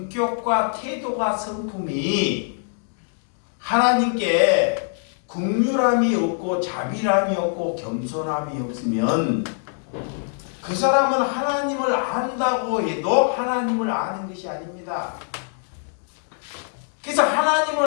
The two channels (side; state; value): right; silent; digital silence